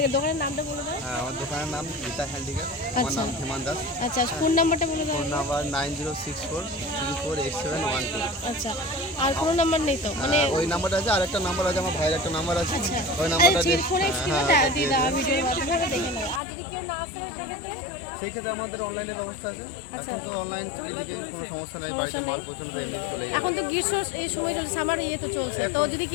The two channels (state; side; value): drops out; right; at 16.4 s